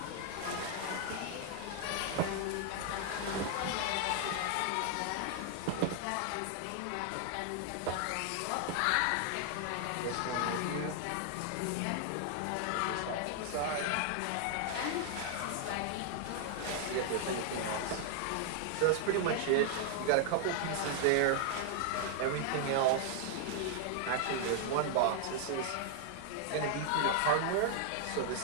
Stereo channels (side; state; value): both; different; correlation 0.00